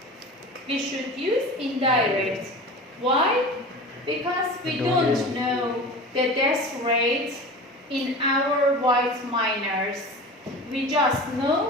We should use indirect. Why? Because we don't know the death rate in our white minors. We just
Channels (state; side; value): normal; both; correlation 0.34